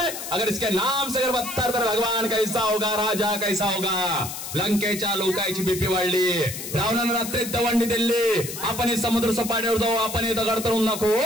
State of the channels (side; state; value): left; noise; hiss, 8 dB below the sound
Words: अगर इसके नाम से अगर बदतर तर भगवान कैसा होगा, राजा कैसा होगा. लंकेच्या लोकांची बीपी वाढली. रावणानं रात्री दवंडी दिली. आपण समुद्र सपाटीवर जाऊ. आपण दगड तरून नको.